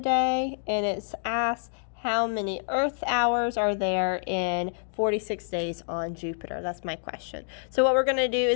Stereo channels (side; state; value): right; silent; digital silence